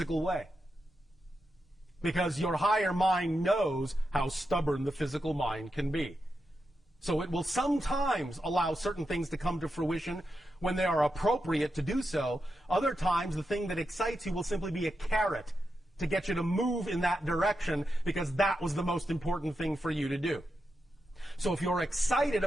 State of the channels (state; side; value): normal; both; correlation 0.87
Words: way. Because your higher mind knows how stubborn the physical mind can be. So it will sometimes allow certain things to come to fruition when they are appropriate to do so. Other times, the thing that excites you will simply be a carrot to get you to move in that direction because that was the most important thing for you to do. So if you're excited